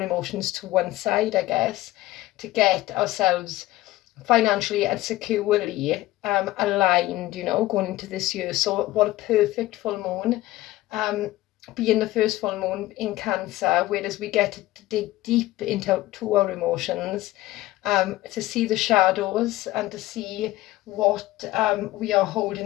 emotions to one side, I guess, to get ourselves financially and securely aligned, you know, going into this year. So what a perfect full moon, being the first full moon in Cancer, whereas we get to dig deep into our emotions, to see the shadows and to see what we are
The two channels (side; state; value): right; quieter; 16.9 dB